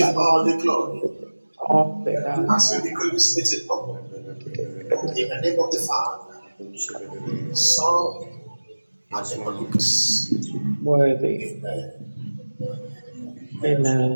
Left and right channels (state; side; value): inverted; both; correlation -1.00